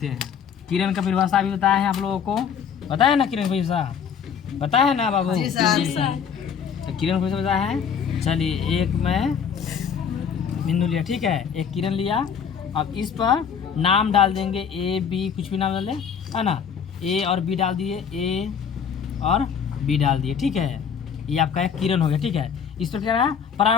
हैं। किरण का परिभाषा भी बताया है आप लोगों को, पता है ना किरण परिभाषा, पता है ना बाबू? तो किरण को बताया है। चलिए एक मैं बिंदु लिया। ठीक है, एक किरण लिया। अब इस पर नाम डाल देंगे ए बी, कुछ भी नाम डाल दें है ना। ए और बी डाल दिए, ए और बी डाल दिए। ठीक है, ये आपका एक किरण हो गया। ठीक है, इस पर क्या रहा,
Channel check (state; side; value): quieter; right; 7.2 dB